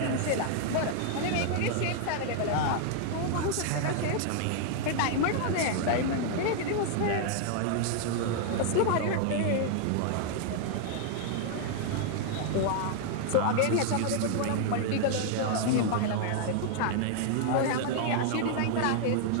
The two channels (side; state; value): both; different; correlation 0.00